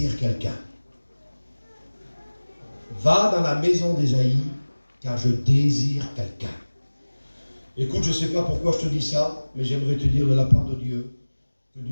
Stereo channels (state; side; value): inverted; both; correlation -1.00